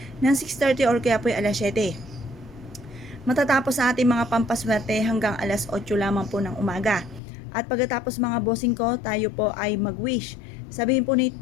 ng 6:30 or kaya po ay alas 7. Matatapos sa ating mga pampaswerte hanggang alas 8 lamang po ng umaga. At pagkatapos mga bossing ko, tayo po ay mag-wish. Sabihin po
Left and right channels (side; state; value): right; drops out; at 7.2 s